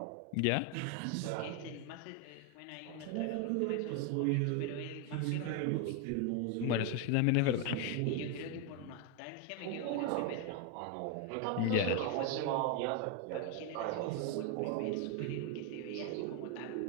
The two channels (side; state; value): both; different; correlation 0.01